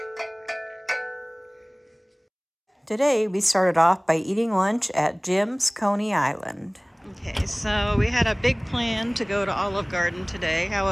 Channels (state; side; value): identical; both; correlation 1.00